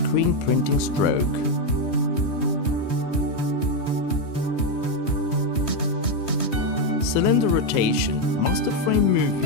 printing stroke. Cylinder rotation, master frame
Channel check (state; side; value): late; right; 3.2 ms